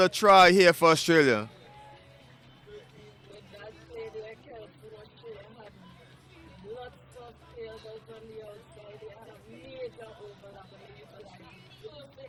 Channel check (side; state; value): both; identical; correlation 1.00